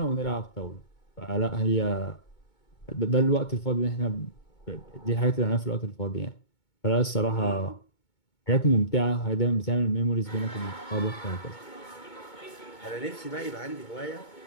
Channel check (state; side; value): late; right; 2.2 ms